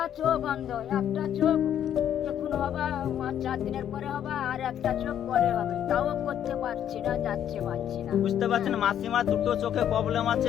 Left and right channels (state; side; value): quieter; right; 10.1 dB